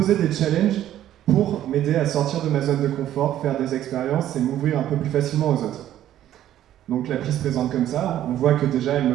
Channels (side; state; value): left; quieter; 12.2 dB